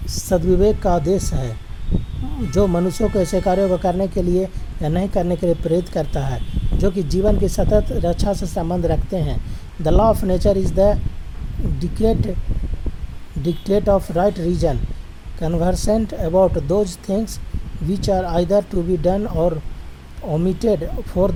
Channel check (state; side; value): identical; both; correlation 1.00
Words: सद्विवेक का आदेश है, जो मनुष्यों को ऐसे कार्यों को करने के लिए या नहीं करने के लिए प्रेरित करता है जो कि जीवन की सतत रक्षा से संबंध रखते हैं। The law of nature is the dictate of right reason, conversant about those things which are either to be done or omitted for